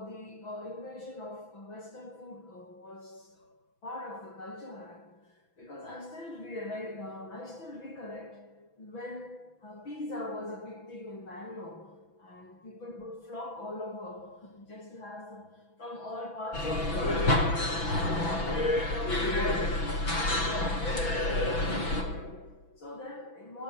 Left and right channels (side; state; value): right; late; 6.1 ms